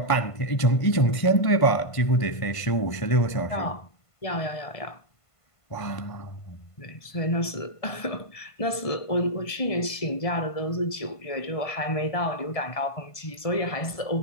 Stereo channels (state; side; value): late; right; 1.5 ms